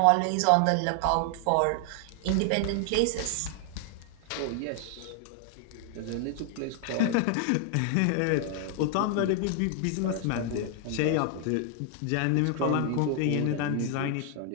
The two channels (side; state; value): both; different; correlation 0.00